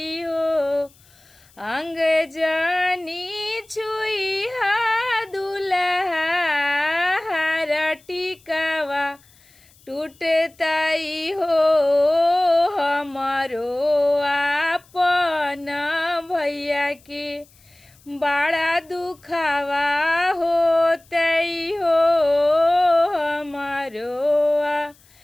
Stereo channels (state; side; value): noise; left; hiss, 29 dB below the sound